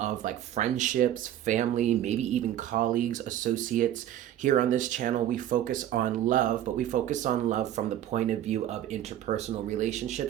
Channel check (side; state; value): left; quieter; 11.8 dB